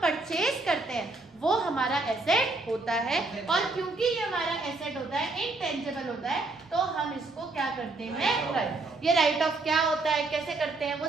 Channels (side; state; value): left; quieter; 3.3 dB